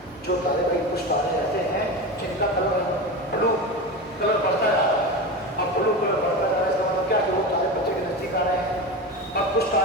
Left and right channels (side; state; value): both; normal; correlation 0.24